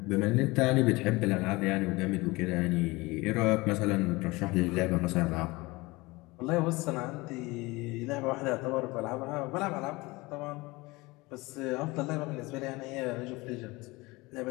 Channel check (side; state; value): right; quieter; 22.7 dB